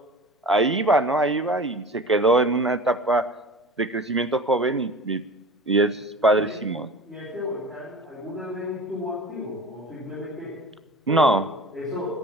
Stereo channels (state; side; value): normal; both; correlation 0.37